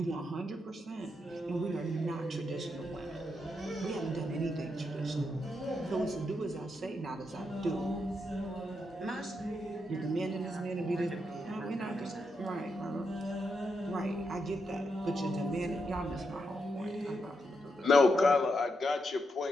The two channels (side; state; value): both; normal; correlation 0.82